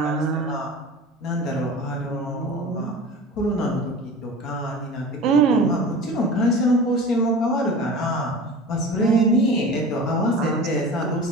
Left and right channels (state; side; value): normal; both; correlation 0.36